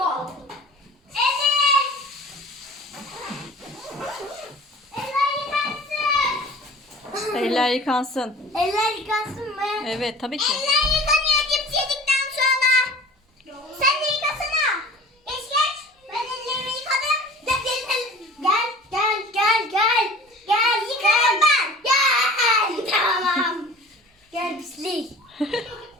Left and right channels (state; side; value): normal; both; correlation 0.43